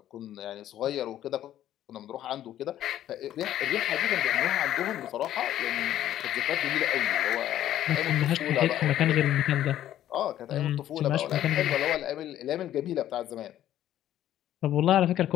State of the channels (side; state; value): right; quieter; 12.2 dB